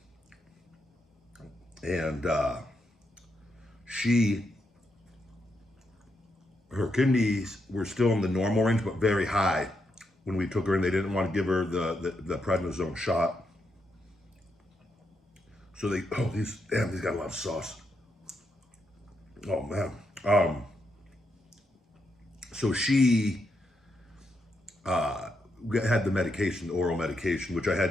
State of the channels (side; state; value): both; normal; correlation 0.81